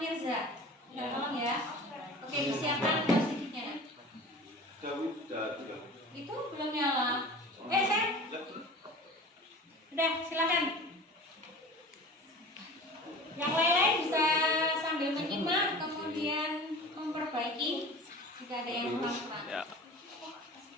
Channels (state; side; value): normal; both; correlation 0.39